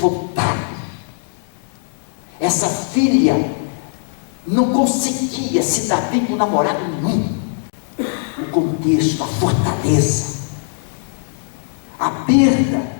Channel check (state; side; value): silent; right; digital silence